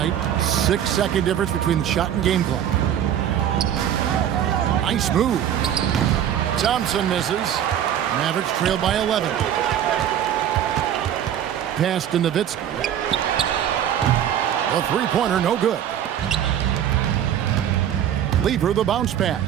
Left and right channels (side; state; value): left; quieter; 10.1 dB